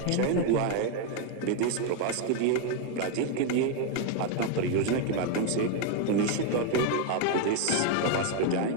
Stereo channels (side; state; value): both; different; correlation 0.01